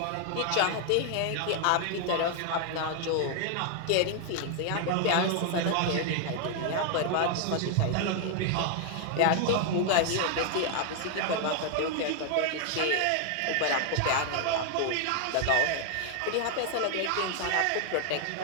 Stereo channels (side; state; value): both; different; correlation 0.00